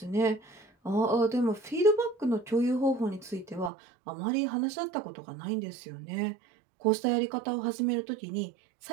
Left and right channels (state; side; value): drops out; left; at 3.7 s